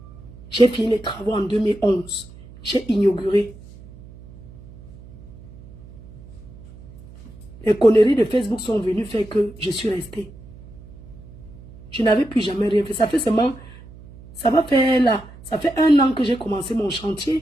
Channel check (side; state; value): right; noise; hum, 19 dB below the sound